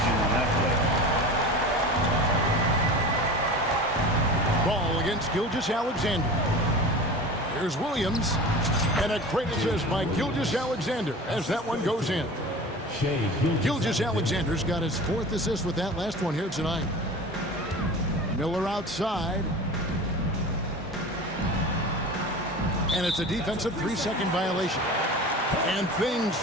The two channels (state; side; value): normal; both; correlation 0.35